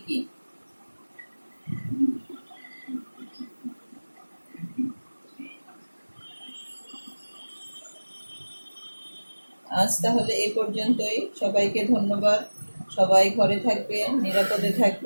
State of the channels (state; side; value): inverted; both; correlation -1.00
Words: কি? আজ তাহলে এই পর্যন্তই। সবাইকে ধন্যবাদ। সবাই ঘরে থাকবে, নিরাপদে